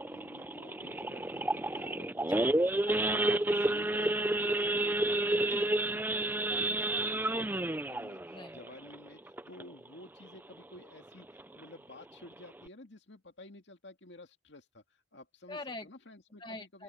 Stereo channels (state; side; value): normal; both; correlation 0.60